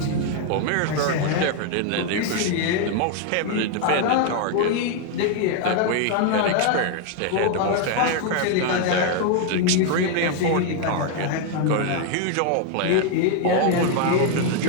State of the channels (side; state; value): both; different; correlation 0.01